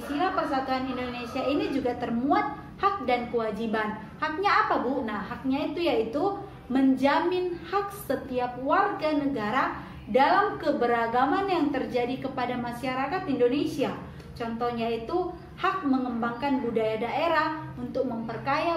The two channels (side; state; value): both; identical; correlation 1.00